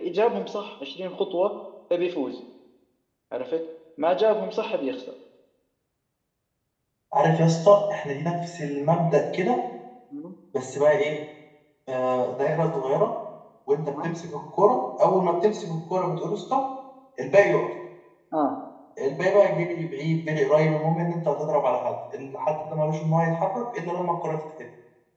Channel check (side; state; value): both; identical; correlation 1.00